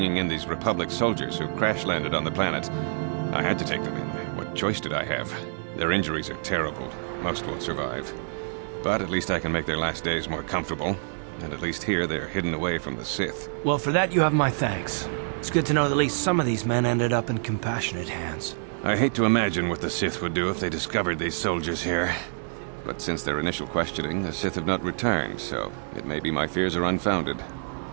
in these Republic soldiers who crash-landed on the planet. I had to take them in. What choice did I have? Their injuries are terrible. Most won't survive. But at least I can make their last days more comfortable. And at least here, they're hidden away from the Sith. Well, for that, you have my thanks. It's good to know that at least some of these men ended up in compassionate hands. I hate to imagine what the Sith would do if they discovered these soldiers here. But since their initial questioning, the Sith have not returned, so it may be my fears are unfounded.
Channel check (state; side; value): silent; left; digital silence